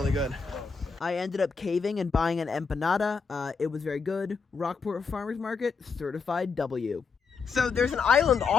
good. I ended up caving and buying an empanada. It was very good. Rockport Farmers Market, certified W. So there's an island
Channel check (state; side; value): quieter; right; 5.3 dB